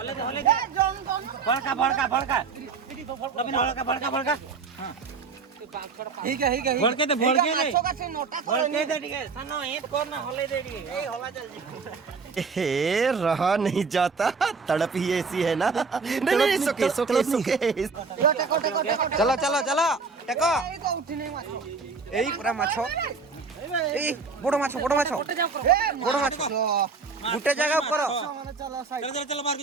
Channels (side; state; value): left; quieter; 4.7 dB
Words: करी होले दे बड़का हां ठीक है भड़के दे ठीक है सनो ईट कोर ना होले दे ए होला चल हे रहा नहीं जाता तड़प ही ऐसी है ना नहीं सुके चलो टेको एई पूरा माछ ए बड़ माछ गुटे जगह करो चलो बाहर